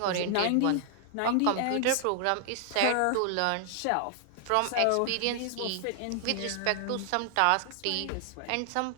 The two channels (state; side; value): different; both; correlation 0.00